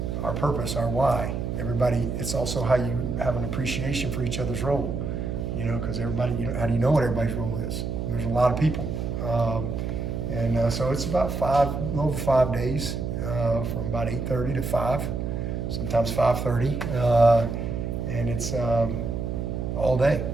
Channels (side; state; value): right; noise; hum, 3 dB below the sound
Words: our purpose, our why. Everybody, it's also how you have an appreciation for each other's role, because everybody, how do you know what everybody's role is? There's a lot of people. So it's about a little over 5 days, from about 8:30 to 5, sometimes 5:30, and it's all day,